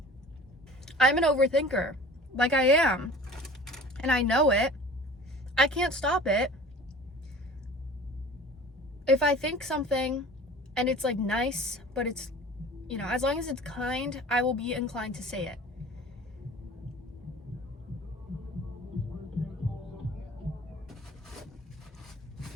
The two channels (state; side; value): normal; both; correlation 0.43